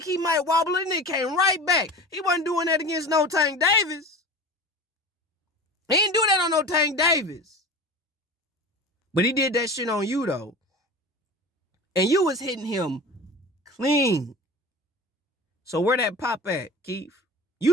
he might wobble and it came right back. He wasn't doing that against no Tank Davis. He didn't do that on no Tank Davis. But he did that shit on you though. And you was hitting him clean. So where that pop at, Keith? You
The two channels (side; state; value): both; normal; correlation 0.34